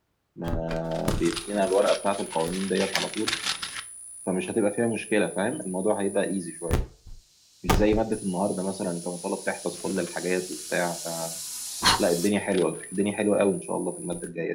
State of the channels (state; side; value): identical; both; correlation 1.00